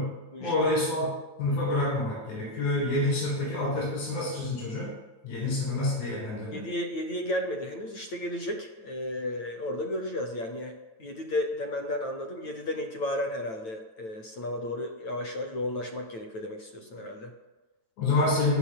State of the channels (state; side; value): late; right; 9.1 ms